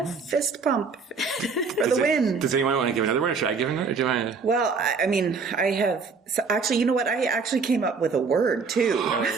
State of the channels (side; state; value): left; quieter; 5.0 dB